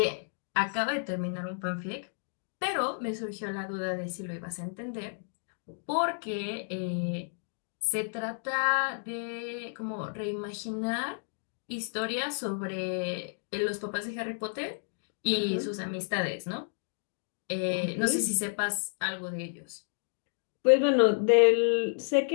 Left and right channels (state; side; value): silent; right; digital silence